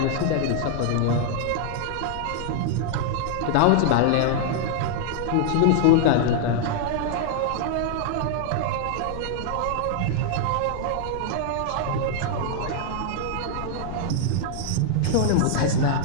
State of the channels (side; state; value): both; different; correlation -0.01